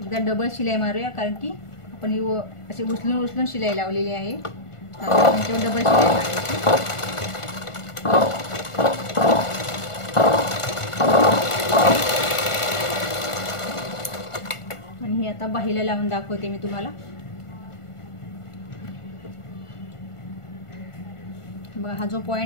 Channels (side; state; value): right; late; 1.4 ms